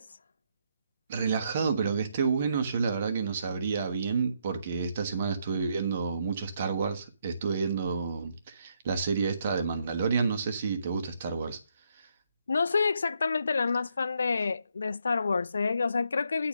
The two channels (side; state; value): both; inverted; correlation -0.75